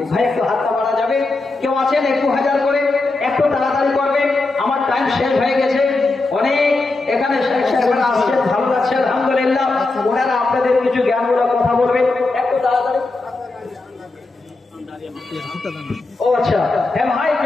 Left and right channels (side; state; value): right; quieter; 3.3 dB